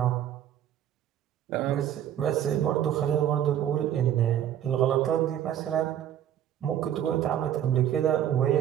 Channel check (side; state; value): left; quieter; 10.7 dB